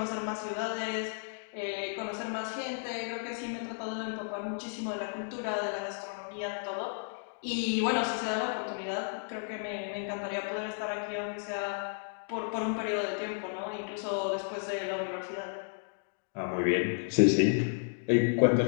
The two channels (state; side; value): silent; right; digital silence